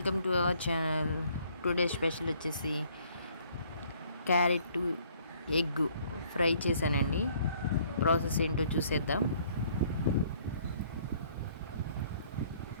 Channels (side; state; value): both; inverted; correlation -0.61